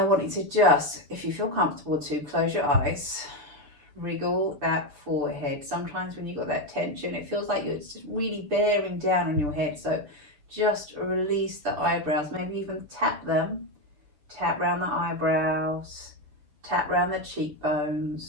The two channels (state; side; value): late; left; 6.9 ms